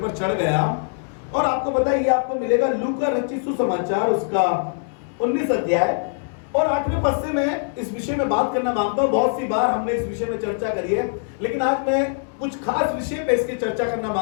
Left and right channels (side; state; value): right; silent; 64 dB below the other